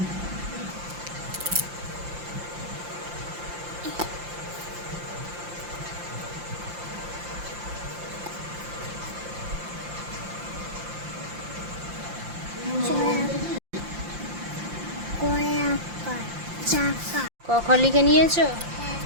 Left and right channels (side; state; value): left; late; 5.7 ms